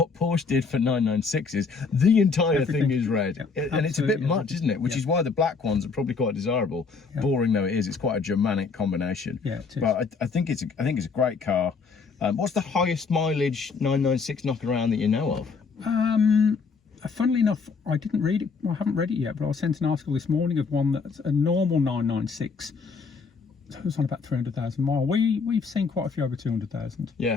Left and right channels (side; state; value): right; quieter; 4.9 dB